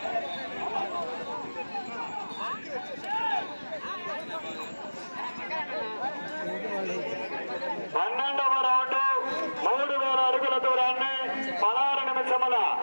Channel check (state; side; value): inverted; both; correlation -1.00